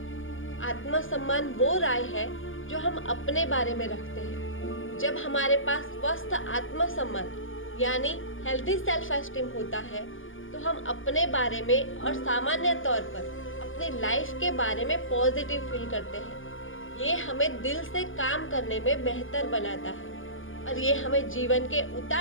आत्मसम्मान वो राय है जो हम अपने बारे में रखते हैं। जब हमारे पास स्वस्थ आत्मसम्मान यानी हेल्दी सेल्फ एस्टीम होता है तो हम अपने बारे में और सामान्य तौर पर अपनी लाइफ के बारे में पॉजिटिव फील करते हैं। ये हमें दिल से काम करने में बेहतर बनाता है और ये हमें जीवन के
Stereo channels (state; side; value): late; right; 0.58 ms